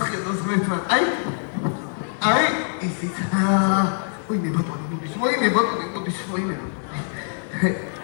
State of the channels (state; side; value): silent; right; digital silence